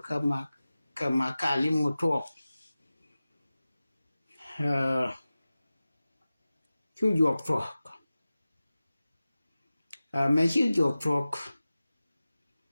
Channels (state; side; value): inverted; both; correlation -0.96